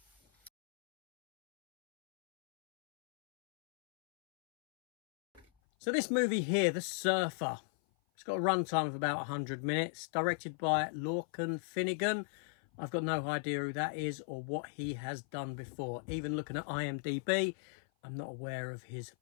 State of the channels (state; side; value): drops out; right; at 5.5 s